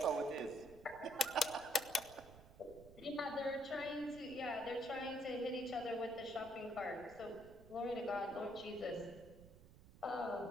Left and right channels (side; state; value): right; noise; rumble, 19 dB below the sound